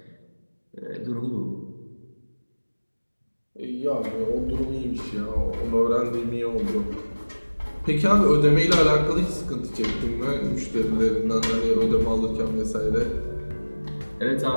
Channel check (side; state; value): both; inverted; correlation -1.00